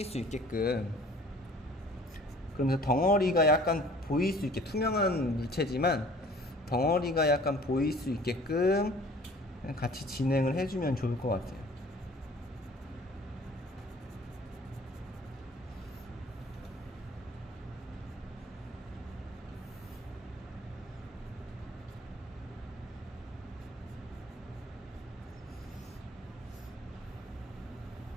수 있게끔, 그러면서 덩어리가 약간 보일 수 있게, 투명한 물체지만 덩어리가 약간 보일 수 있게끔 같이 진행을 해주면 좋을 것 같아요.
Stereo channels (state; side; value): normal; both; correlation 0.50